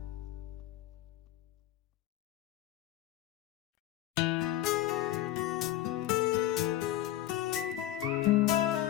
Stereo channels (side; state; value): right; quieter; 13.8 dB